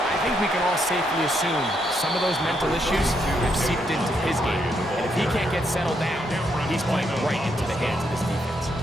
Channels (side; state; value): both; normal; correlation 0.77